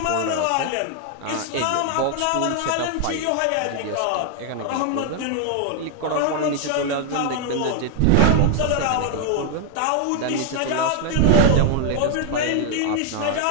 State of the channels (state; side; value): different; both; correlation 0.00